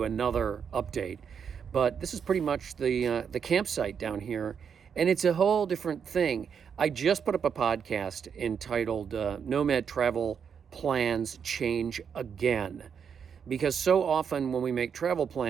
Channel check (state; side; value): quieter; left; 7.1 dB